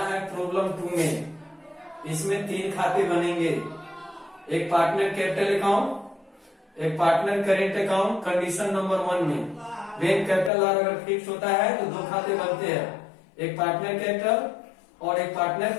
है प्रॉब्लम 2 में। इसमें 3 खाते बनेंगे, एक पार्टनर कैपिटल अकाउंट, एक partner current account. Condition number 1 में वेन कैपिटल अगर फिक्स होता है तो 2 खाते बनते हैं, एक पार्टनर कैपिटल और एक पार्टनर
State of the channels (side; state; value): right; drops out; at 10.5 s